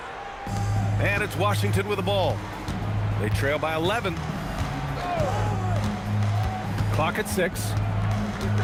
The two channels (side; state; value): both; identical; correlation 1.00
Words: And it's Washington with the ball. They trail by 11. Clock at 6.